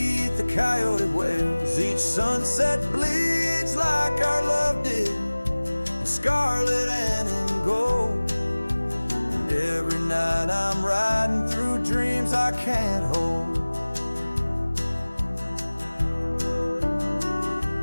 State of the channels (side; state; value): both; inverted; correlation -1.00